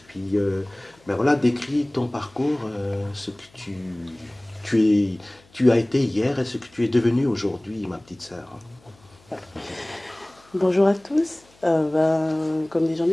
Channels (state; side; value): noise; left; hum, 30 dB below the sound